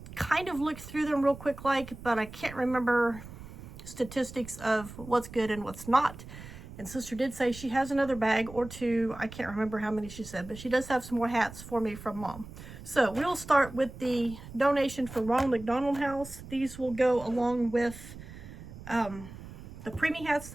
kind of looked through them real quick but I can't remember statistics of what's good and what's not. And sister did say she has another bag or two. I can't remember how many she said, but she does have some more hats for me from mom. So we'll start with the donation for Ronald McDonald House. These will go along with the preemie hats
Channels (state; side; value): noise; right; rumble, 14 dB below the sound